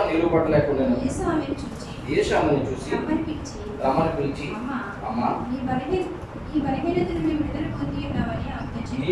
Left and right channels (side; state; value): both; identical; correlation 1.00